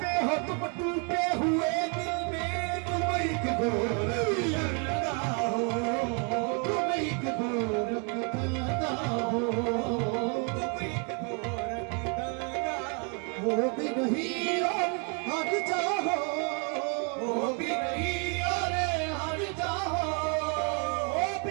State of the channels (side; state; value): left; quieter; 37.4 dB